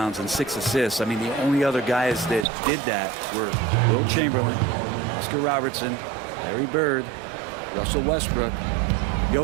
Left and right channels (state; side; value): drops out; left; at 2.5 s